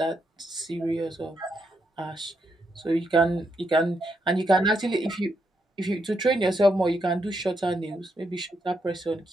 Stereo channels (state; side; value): normal; both; correlation 0.80